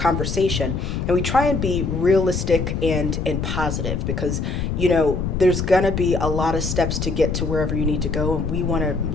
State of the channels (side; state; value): left; noise; rumble, 2 dB below the sound